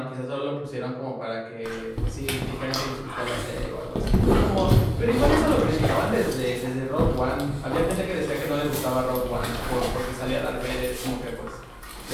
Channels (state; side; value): identical; both; correlation 1.00